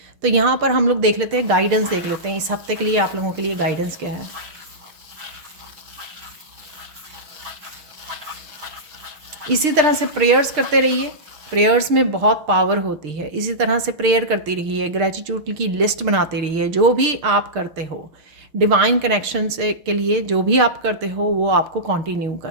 तो यहाँ पर हम लोग देख लेते हैं, गाइडेंस देख लेते हैं इस हफ्ते के लिए आप लोगों के लिए गाइडेंस क्या है। इसी तरह से प्रेयर्स करते रहिए, प्रेयर्स में बहुत पावर होती है। इसी तरह से प्रेयर करती रहिए, ग्रेटिट्यूड की लिस्ट बनाते रहिए। जो भी आप करते हो डिवाइन कनेक्शन से के लिए, जो भी आप करते हो वो आपको कंटिन्यू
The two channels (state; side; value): late; left; 6.6 ms